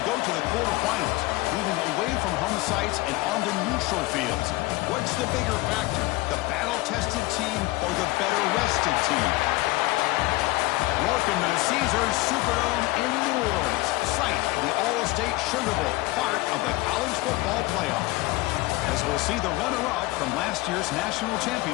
go to the quarterfinals, moving away from home sites and onto neutral fields. What's the bigger factor, the battle-tested team or the better-rested team? Welcome to the Caesars Superdome in New Orleans, site of the All-State Sugar Bowl, part of the college football playoff. As we'll see the runner-up from last year's national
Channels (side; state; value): right; quieter; 20.6 dB